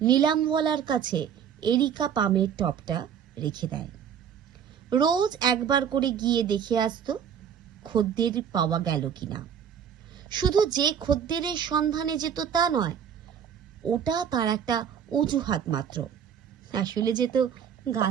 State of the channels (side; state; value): left; quieter; 8.2 dB